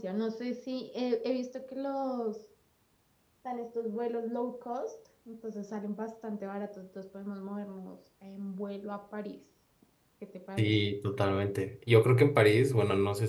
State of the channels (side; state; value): both; identical; correlation 1.00